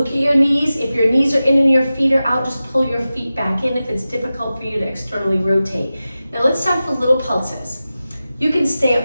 at your knees. If your knees are in and your feet are out, just pull your feet back in if it's difficult for you to externally rotate. Now let's start with little pulses. You can stay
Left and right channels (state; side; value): inverted; both; correlation -0.94